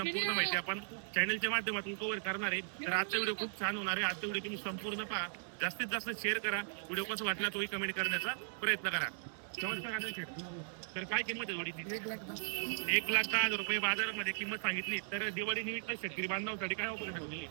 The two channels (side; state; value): left; silent; digital silence